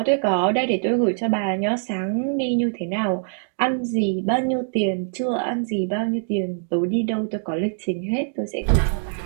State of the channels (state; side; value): silent; left; digital silence